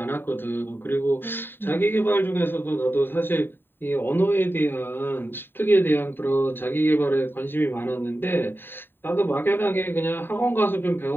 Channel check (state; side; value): late; right; 0.098 ms